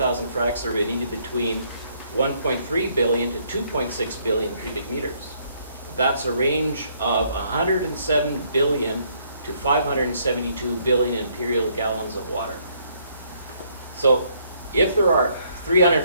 fracks, there would be needed between 1.3 billion to 2.6 billion cubic meters. That's a range of 107 billion to 572 billion imperial gallons of water. So if there are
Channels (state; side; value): inverted; both; correlation -0.68